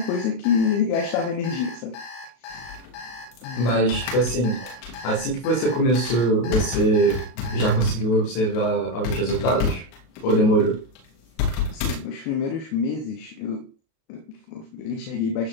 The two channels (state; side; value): late; right; 32 ms